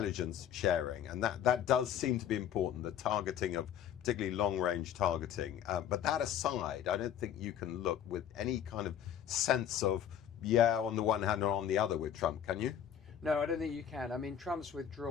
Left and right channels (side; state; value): right; quieter; 9.6 dB